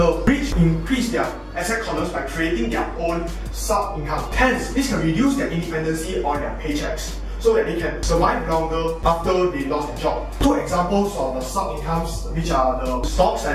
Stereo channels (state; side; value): identical; both; correlation 1.00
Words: rich increase their asset columns by creating their own sub-income. Hence, this can reduce their dependency on their paychecks, so that they can survive longer after they lost their job. Two examples of the sub-incomes, which are the stocks